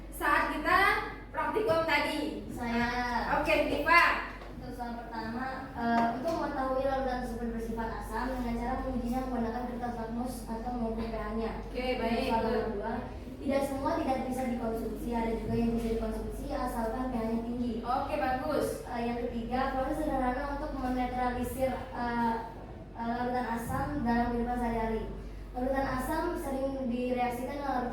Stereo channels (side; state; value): both; identical; correlation 1.00